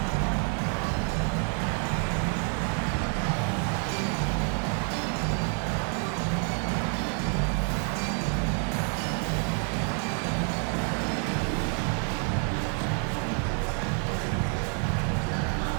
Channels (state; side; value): quieter; left; 37.9 dB